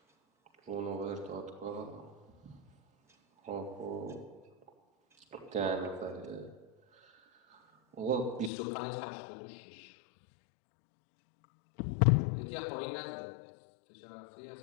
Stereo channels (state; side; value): drops out; right; at 8.5 s